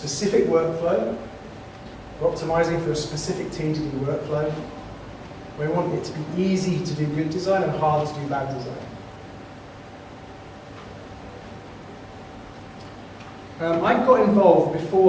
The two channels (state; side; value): identical; both; correlation 1.00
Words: workflow. We're optimizing for a specific TDD workflow. We want it to be easy to do good design and hard to do bad design. I got involved